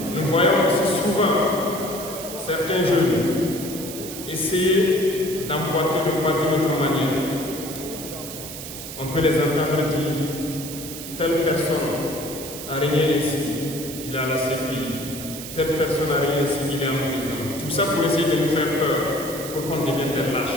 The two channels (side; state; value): right; noise; hiss, 10 dB below the sound